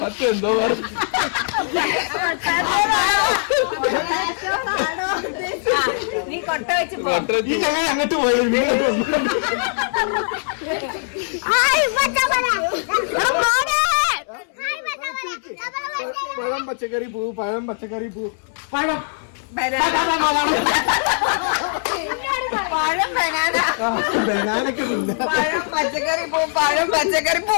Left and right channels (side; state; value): right; silent; 65 dB below the other